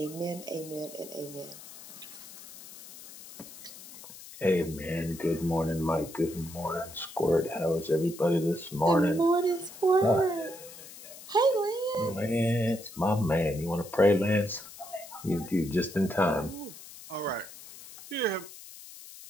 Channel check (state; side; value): noise; left; hiss, 16 dB below the sound